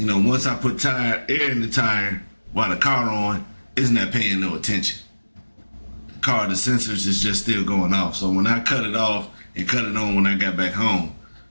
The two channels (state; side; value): inverted; both; correlation -1.00